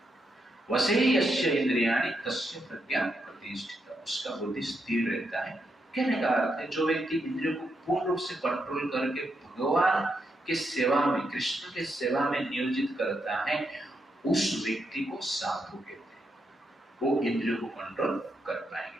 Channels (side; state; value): both; normal; correlation 0.81